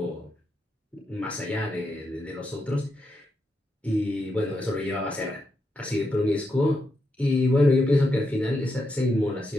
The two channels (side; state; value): both; normal; correlation 0.84